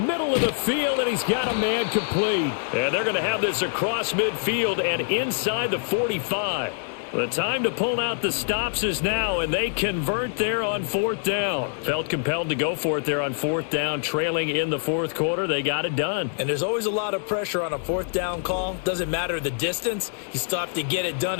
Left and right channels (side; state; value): right; silent; digital silence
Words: of the field, and he's got a man complete. And they're going to have this across midfield and inside the 45. The time to pull out the stops is now, and they convert there on 4th down. Felt compelled to go for it there on 4th down, trailing in the 4th quarter. They got it done. And there's always a lot of pressure on a 4th down call. Doesn't matter the distance. You still have to get it done,